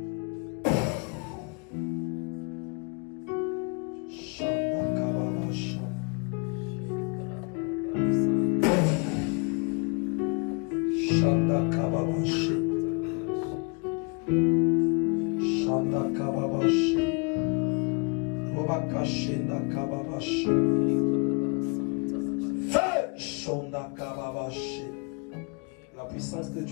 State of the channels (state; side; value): quieter; right; 33.4 dB